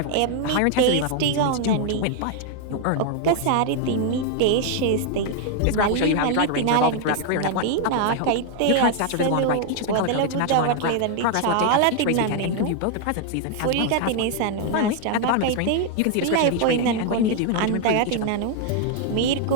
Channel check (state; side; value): different; both; correlation 0.00